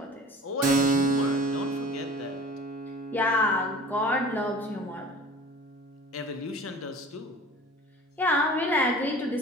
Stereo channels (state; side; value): normal; both; correlation 0.43